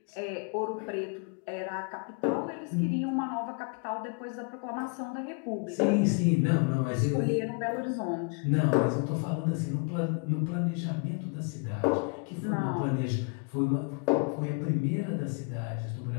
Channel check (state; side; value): quieter; right; 35.8 dB